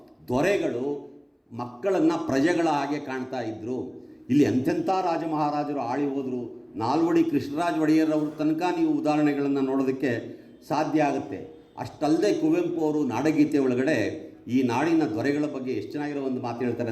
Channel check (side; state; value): both; identical; correlation 1.00